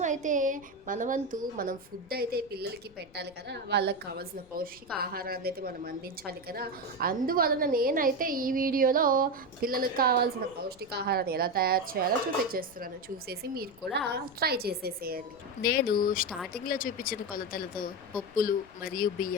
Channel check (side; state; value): left; noise; rumble, 25 dB below the sound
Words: మన వంతు మనం ఫుడ్ అయితే పిల్లలకి పెట్టాలి కదా, వాళ్ళకి కావాల్సిన పౌష్టిక ఆహారాన్ని అయితే మనం అందించాలి కదా. అందువలన నేనైతే ఈ వీడియోలో పిల్లలకు కావాల్సిన పౌష్టికాహారాన్ని ఎలా తయారు చేయాలో చూపించేస్తున్నాను. చూసేసి మీరు కూడా ట్రై చేసేసేయండి. నేను స్టార్టింగ్లో చూపించిన కొలతలతో పప్పులు మరియు